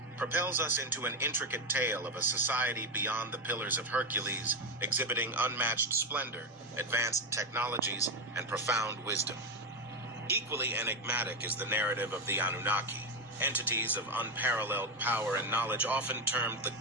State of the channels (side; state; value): both; normal; correlation 0.11